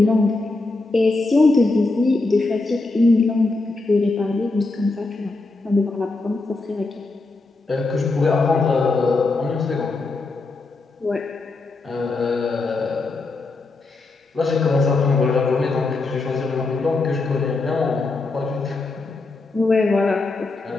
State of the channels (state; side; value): quieter; right; 3.4 dB